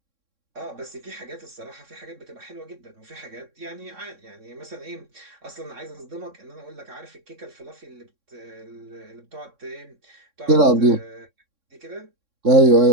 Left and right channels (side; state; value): left; late; 3.6 ms